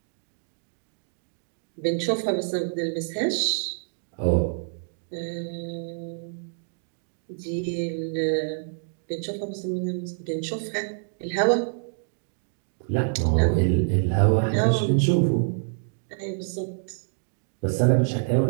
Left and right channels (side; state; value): left; silent; digital silence